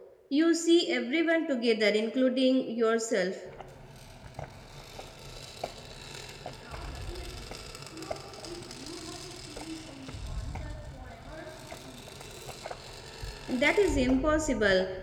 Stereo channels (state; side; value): identical; both; correlation 1.00